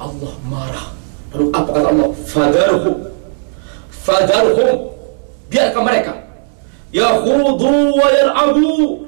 Allah marah. Lalu apa kata Allah? Fadarhum, biarkan mereka yakhudu wa yal'abu,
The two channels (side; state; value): left; silent; digital silence